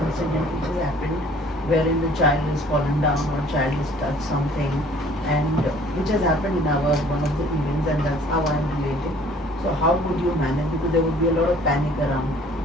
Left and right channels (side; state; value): both; normal; correlation 0.54